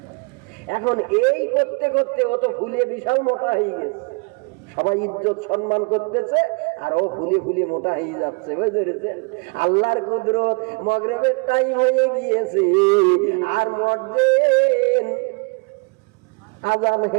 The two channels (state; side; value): quieter; left; 33.7 dB